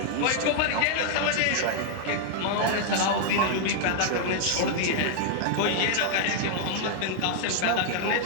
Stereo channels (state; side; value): different; both; correlation 0.00